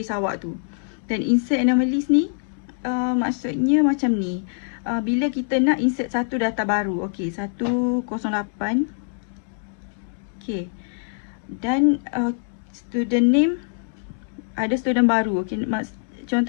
awak tu. Dan insert anomalies ni maksudnya macam ni. Bila kita nak insert satu data baru, okey, 108. Okey. Dan student name, ada student baru. Okey,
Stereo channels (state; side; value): silent; right; digital silence